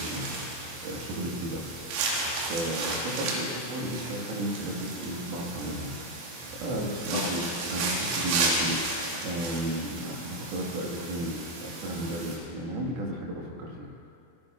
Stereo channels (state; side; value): late; left; 24 ms